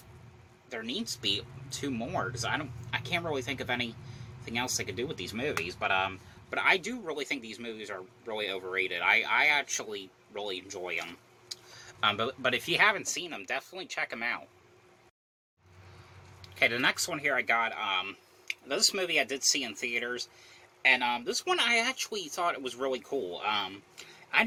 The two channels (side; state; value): both; identical; correlation 1.00